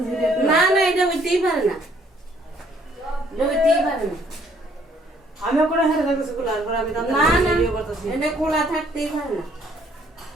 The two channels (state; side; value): normal; both; correlation 0.64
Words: না না, এটা হইতেই পারে না, এটা হইতেই পারে না। আমি ওখানে হেরে দেখতেছি গুলার পর আমি দাদা না না, ভিডিও করতেছি এটা খোলা থাকতেই পারে না।